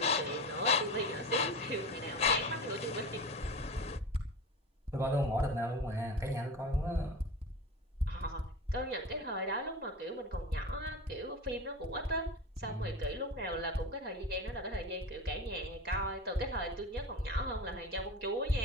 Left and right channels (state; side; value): normal; both; correlation 0.28